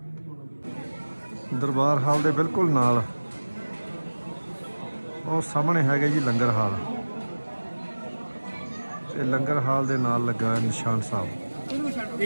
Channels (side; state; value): both; inverted; correlation -1.00